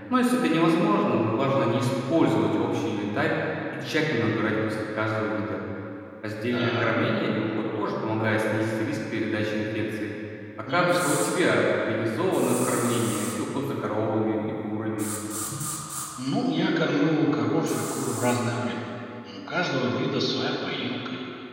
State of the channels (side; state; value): both; identical; correlation 1.00